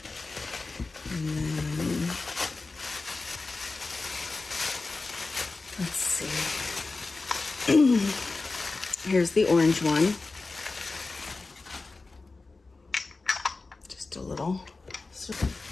then, let's see. Here's the orange one. Just a little.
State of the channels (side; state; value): right; quieter; 3.7 dB